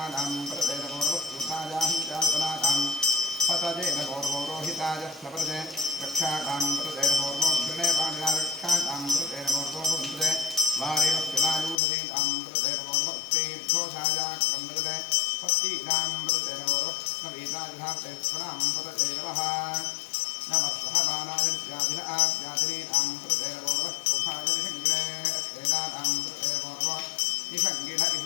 सुखाजाहञ्चाल्पनाताम् पतजेन मोर्मोरोहिताय स्लपते रक्षाकामृतेर्मोर्मो गृणे पाणिना रक्षाकामृतेर्मोर्मो भुवन्ते वारेवस्तिलायूषधीतामृतेर्मोर्मो स्त्रीर्घोषाजाक्रमृते पत्तीनामृतेर्मोर्मो कृष्णवीताजुधाप्तेश्वरामृते नमः नमः सहमानाय व्याधिन आव्याधिनीनामृतेर्मोर्मो कुभाय निषङ्गिणे स्तेनानामृतेर्मोर्मो निषङ्गिण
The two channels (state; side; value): drops out; right; at 11.8 s